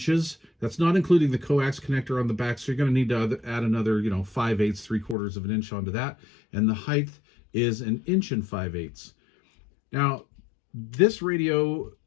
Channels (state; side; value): drops out; right; at 5.2 s